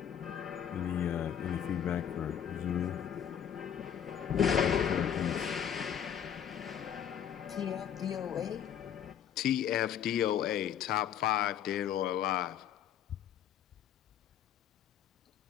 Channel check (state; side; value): quieter; right; 9.2 dB